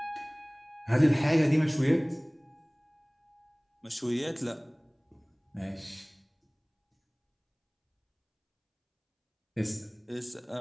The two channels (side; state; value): both; identical; correlation 1.00